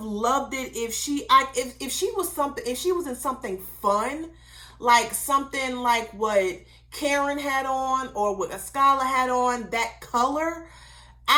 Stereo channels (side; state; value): both; identical; correlation 1.00